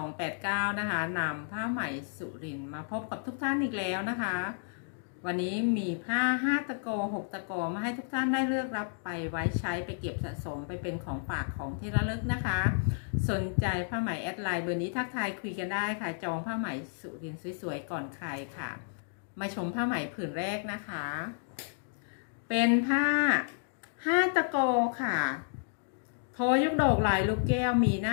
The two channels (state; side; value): silent; right; digital silence